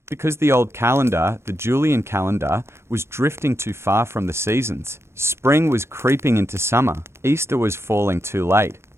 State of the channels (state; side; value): late; left; 0.13 ms